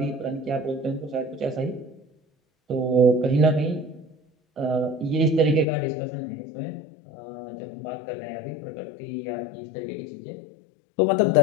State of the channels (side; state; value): right; drops out; at 5.7 s